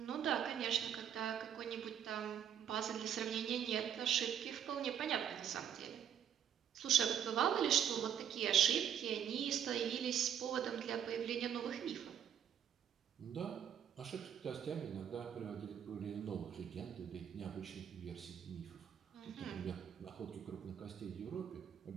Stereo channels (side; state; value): left; quieter; 9.1 dB